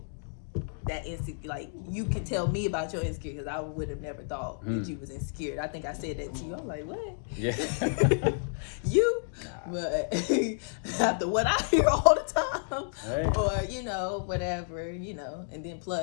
that insecure. Like you can tell me about your insecurity, because I would have never thought that you was insecure. I think I said that to you. I'm like, what? Yeah. You? But after what I hear all the time, Hey. or whatever, and then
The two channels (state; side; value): silent; right; digital silence